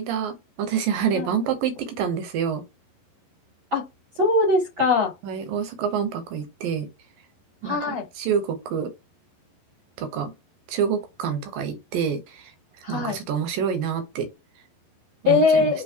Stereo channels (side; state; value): left; late; 11 ms